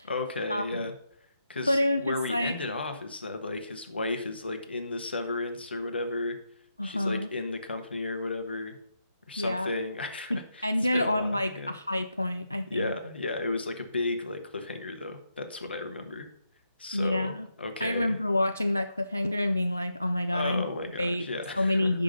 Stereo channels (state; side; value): inverted; both; correlation -0.84